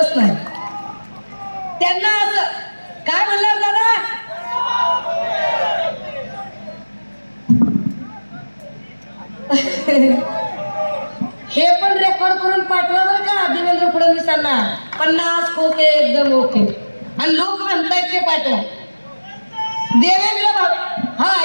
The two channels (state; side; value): inverted; both; correlation -1.00